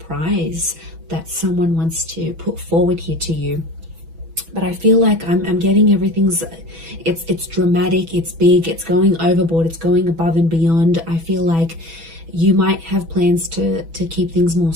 that someone wants to put forward here to you. But I feel like I'm getting everything's, it's dramatic, it's big, it's going overboard, it's going above and beyond. I feel like you might have plans to keep things more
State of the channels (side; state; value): left; late; 6.1 ms